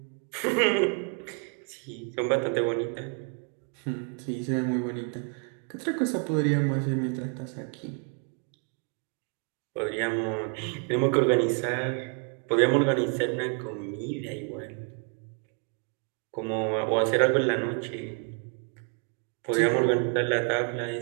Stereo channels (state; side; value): quieter; left; 37.8 dB